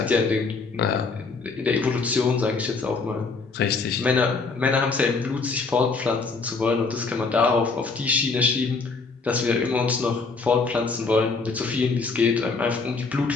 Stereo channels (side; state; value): right; quieter; 4.3 dB